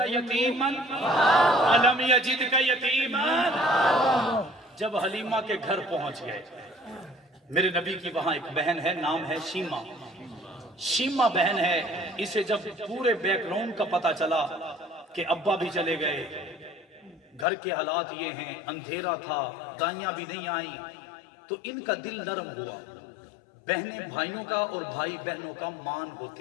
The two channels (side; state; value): right; drops out; at 17.4 s